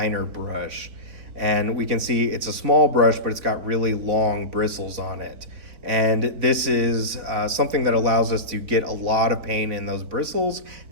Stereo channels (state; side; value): late; left; 3.8 ms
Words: brush. And we can see it's a small brush, but it's got really long bristles on it. And this is something that allows us to get a lot of paint in those bristles,